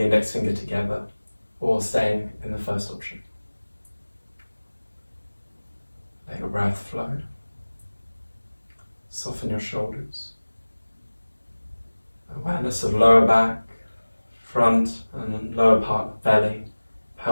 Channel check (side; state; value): both; inverted; correlation -1.00